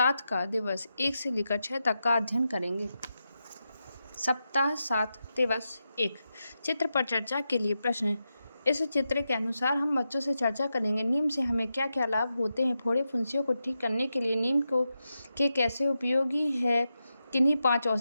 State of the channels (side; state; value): both; inverted; correlation -0.88